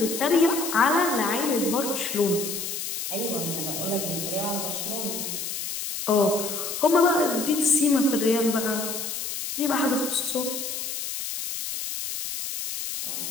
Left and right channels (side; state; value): left; noise; hiss, 5 dB below the sound